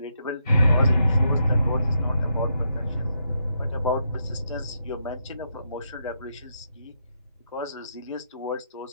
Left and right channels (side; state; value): both; inverted; correlation -0.79